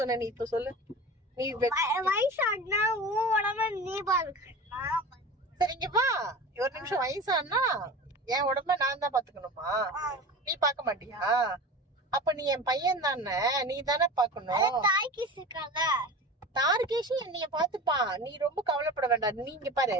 நீ இப்ப சொல்லு. நீ வயசானா உன் உடம்ப நீ பாத்துக்கணும். சரி இங்க வா, ஒரு நிமிஷம். வயசானா என் உடம்ப நான் தான் பாத்துக்கணுமா? நீ பாக்க மாட்டியா? அப்ப நீ என் பையன் தானே, நீ தானே பாக்கணும். தார்கேஷ் என்னைய பாத்துப்பான், நீ ரொம்ப கவலைப்பட வேண்டாம். நீ இங்க பாரு,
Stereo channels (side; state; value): both; normal; correlation 0.33